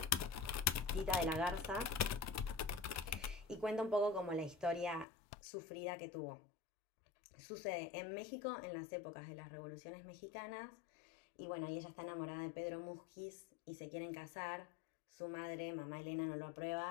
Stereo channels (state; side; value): drops out; right; at 5.1 s